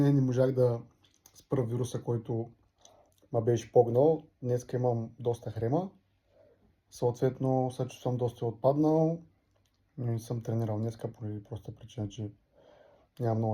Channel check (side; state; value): both; identical; correlation 1.00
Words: не можах да спра вируса, който ме беше погнал. Днес имам доста хрема. Съответно, се чувствам доста отпаднал, но не съм тренирал днеска поради проста причина, че нямам